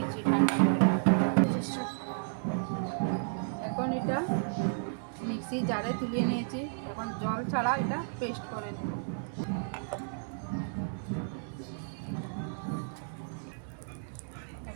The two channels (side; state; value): left; silent; digital silence